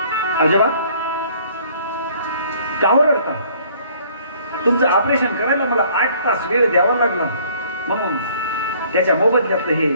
आजोबा का रडता? तुमचं ऑपरेशन करायला मला 8 तास वेळ द्यावा लागला, म्हणून त्याच्या मोबदल्यातलं हे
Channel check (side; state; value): both; inverted; correlation -0.58